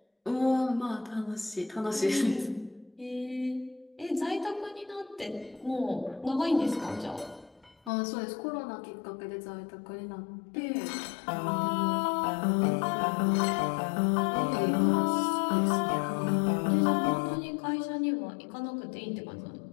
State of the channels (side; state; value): right; drops out; at 7.9 s